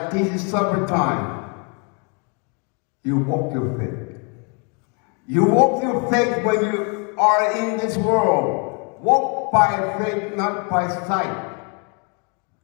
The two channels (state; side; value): quieter; right; 34.9 dB